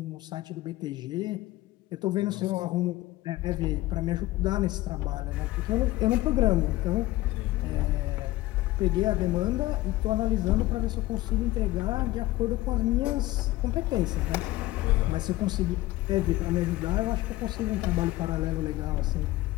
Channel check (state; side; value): quieter; right; 17.5 dB